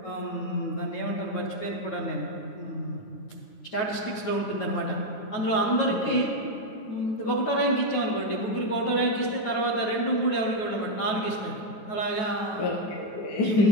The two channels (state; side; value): late; right; 9.3 ms